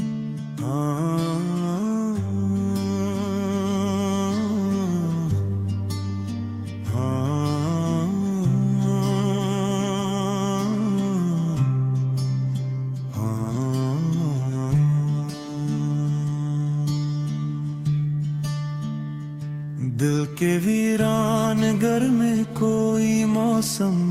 दिल के वीरान घर में कोई मौसम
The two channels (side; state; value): both; identical; correlation 1.00